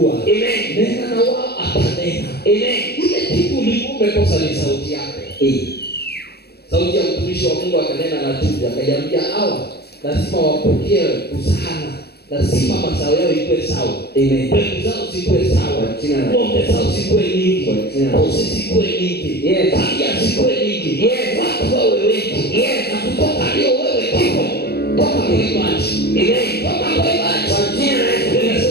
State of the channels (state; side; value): late; right; 0.47 ms